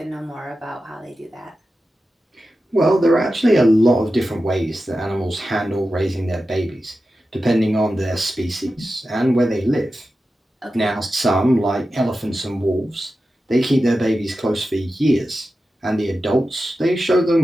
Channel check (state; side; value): normal; both; correlation 0.92